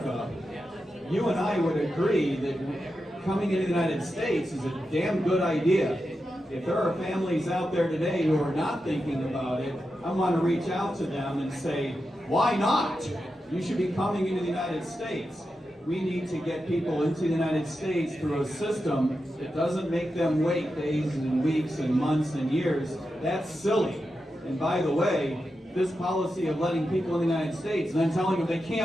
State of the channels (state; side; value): normal; both; correlation 0.89